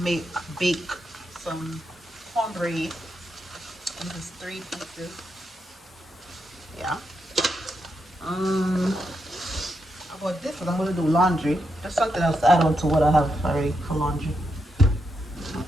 bake some cornbread. This is 3 pieces. Yeah. I bought this because I'm gonna do laundry. There's something else to add on to what I have already for laundry.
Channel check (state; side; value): normal; both; correlation 0.83